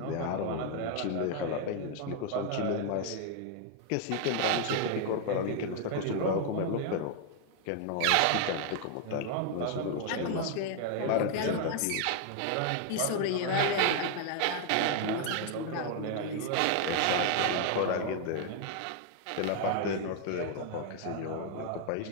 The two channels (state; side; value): different; both; correlation 0.00